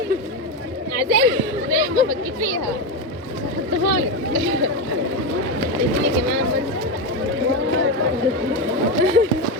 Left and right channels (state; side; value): normal; both; correlation 0.12